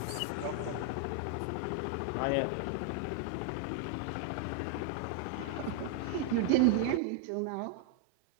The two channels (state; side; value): different; both; correlation 0.00